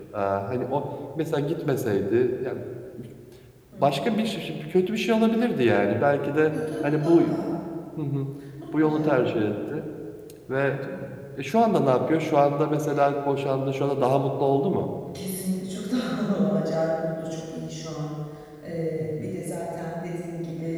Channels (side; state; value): both; identical; correlation 1.00